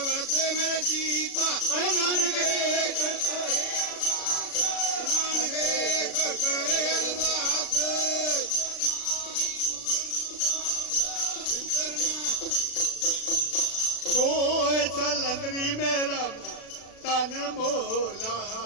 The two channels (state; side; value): late; right; 36 ms